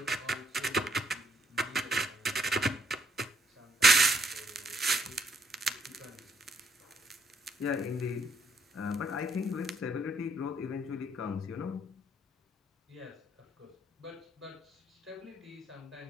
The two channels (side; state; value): both; normal; correlation 0.70